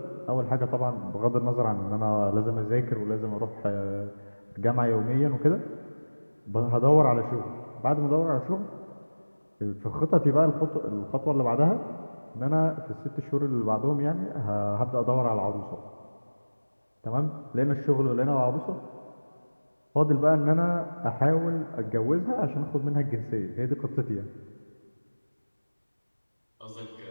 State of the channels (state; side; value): inverted; both; correlation -1.00